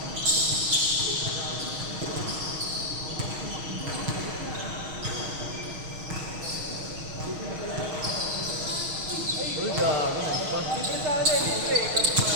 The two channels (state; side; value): late; left; 6.4 ms